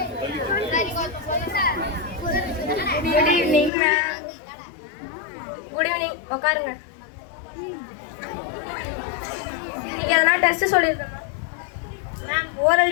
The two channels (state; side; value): drops out; right; at 3.7 s